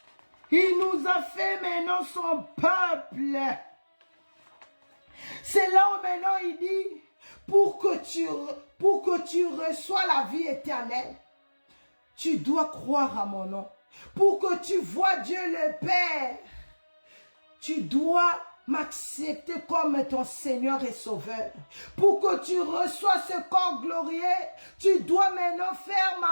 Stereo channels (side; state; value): both; inverted; correlation -1.00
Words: Il nous a fait maintenant son peuple. C'est là où maintenant il dit, pour que tu reçois la vie éternelle, tu dois croire à mon nom. Pour que tu vois Dieu le Père, tu dois m'accepter comme ton Seigneur et Sauveur. Pour que tu reçois ce corps glorieux, tu dois maintenant faire